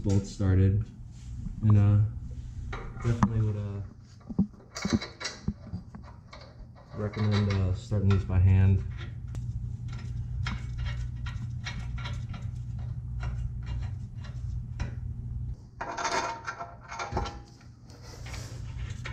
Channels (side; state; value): both; identical; correlation 1.00